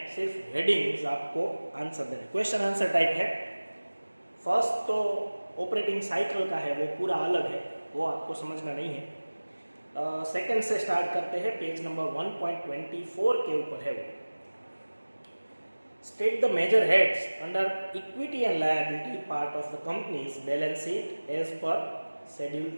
सिर्फ हेडिंग्स आपको आंसर देने, क्वेश्चन आंसर टाइप है। फर्स्ट तो ऑपरेटिंग साइकिल का है, वो पूरा अलग है, वो आपको समझना नहीं है। सेकंड से स्टार्ट करते हैं, पेज नंबर 1.24 के ऊपर है वो। State the major heads under equity and liability part of the company's balance sheet as per Schedule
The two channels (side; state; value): both; inverted; correlation -1.00